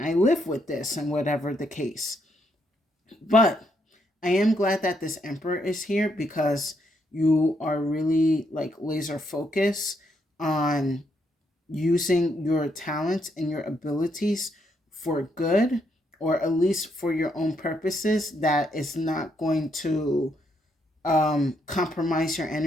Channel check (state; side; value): normal; both; correlation 0.76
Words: live with this? And whatever the case. But I am glad that this Emperor is here, because you are really like laser focused on using your talents and your abilities for good, or at least for your own purposes, that is not going to compromise your